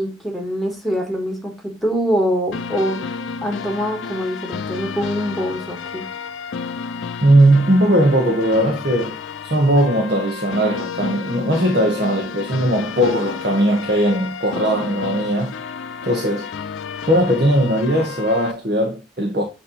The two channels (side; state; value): both; normal; correlation 0.58